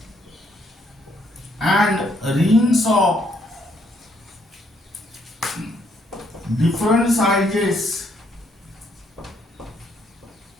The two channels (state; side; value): normal; both; correlation 0.70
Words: and rings of different sizes